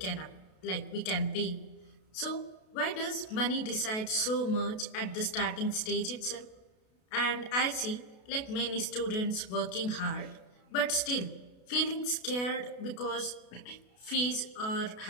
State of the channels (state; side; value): late; right; 32 ms